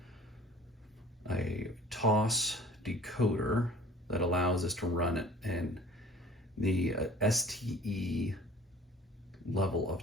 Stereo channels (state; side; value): normal; both; correlation 0.47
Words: TOS decoder that allows us to run it in the STE level of